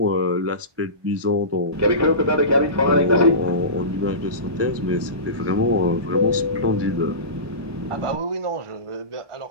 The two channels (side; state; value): left; late; 1.2 ms